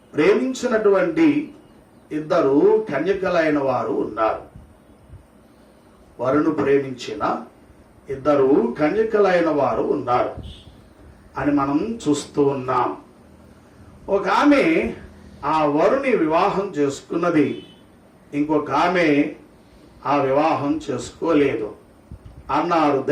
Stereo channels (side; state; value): both; identical; correlation 1.00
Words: ప్రేమించినటువంటి 2 కన్యకలైన వారు ఉన్నారు. వరును ప్రేమించిన 2 కన్యకలైన వారు ఉన్నారు అని మనం చూస్తూ ఉన్నాం. ఒక ఆమె ఆ వరుని వివాహం చేసుకున్నది, ఇంకొక ఆమె ఆ వివాహం చేసుకోలేదు అన్నారు